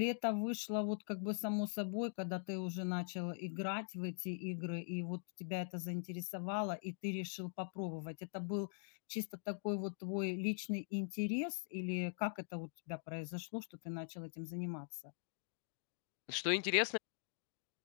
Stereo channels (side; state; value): right; silent; digital silence